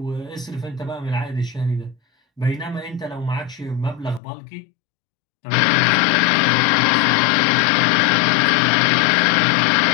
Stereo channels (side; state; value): right; drops out; at 4.2 s